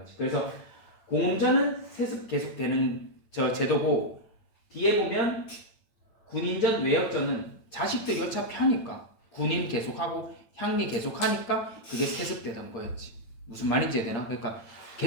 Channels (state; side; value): late; right; 9.0 ms